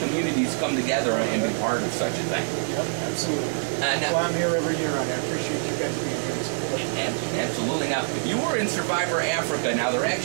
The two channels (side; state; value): left; silent; 59 dB below the other